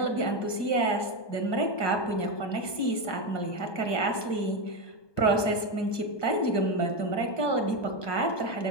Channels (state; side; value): late; right; 1.2 ms